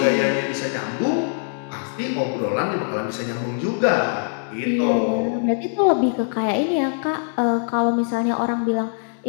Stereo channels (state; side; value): silent; right; 60 dB below the other